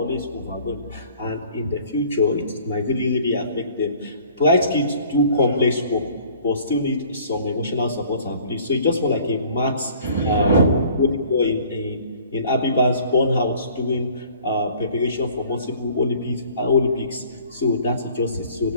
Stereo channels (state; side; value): inverted; both; correlation -0.53